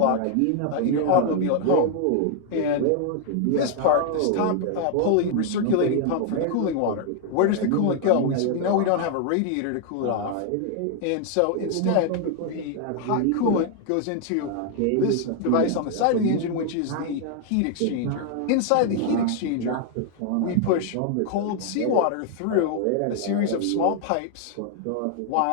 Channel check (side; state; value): both; different; correlation 0.00